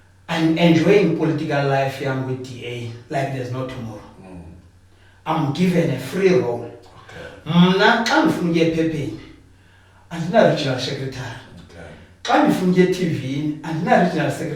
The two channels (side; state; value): both; identical; correlation 1.00